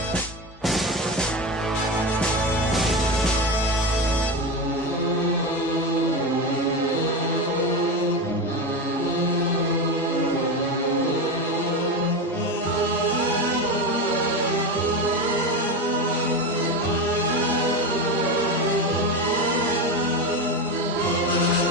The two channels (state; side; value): normal; both; correlation 0.19